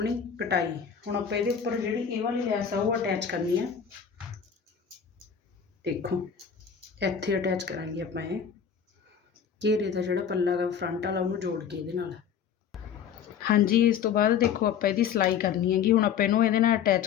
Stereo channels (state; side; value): quieter; right; 7.8 dB